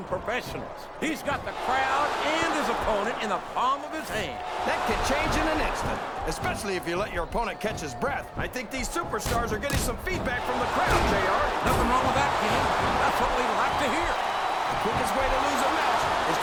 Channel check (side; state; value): both; identical; correlation 1.00